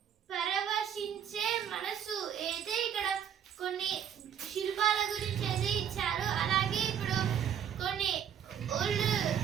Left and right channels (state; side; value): quieter; left; 8.9 dB